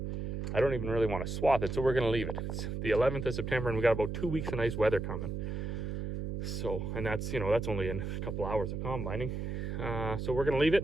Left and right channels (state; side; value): noise; right; hum, 4 dB below the sound